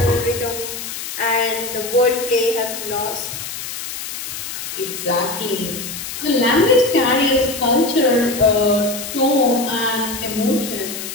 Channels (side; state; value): left; noise; hiss, 7 dB below the sound